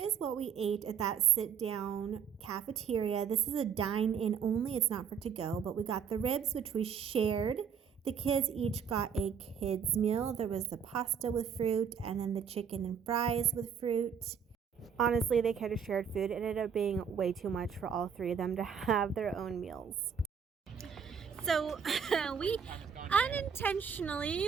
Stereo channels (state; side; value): quieter; left; 7.1 dB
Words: what we ate at that sit-down cafeteria. This is a dine-in only, it's not for to-go, but we got the ribs, which we shared. The kids each got a kids meal. There was the pasta with fruit and then the chicken and fries with fruit. Honestly, they could have shared food. It ended up being way too much for all 3 of them to have their own meals. So we